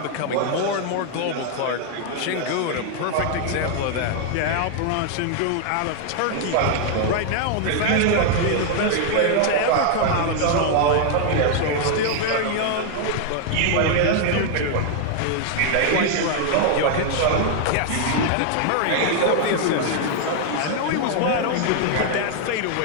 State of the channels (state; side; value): different; both; correlation 0.00